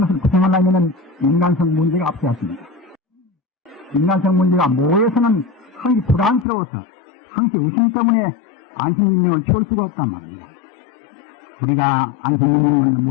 것을 구성하려면 인간성 문제가 앞서야 합니다. 인간성 문제가 모여서는 항시 불안스러워서 항시 의심 때문에 안심인명을 키울 수가 없단 말입니다. 우리가 안심인명을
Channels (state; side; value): drops out; right; at 6.5 s